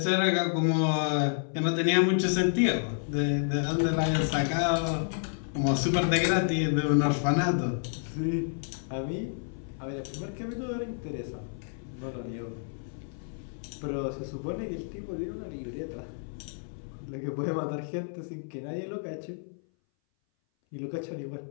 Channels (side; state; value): right; silent; 58 dB below the other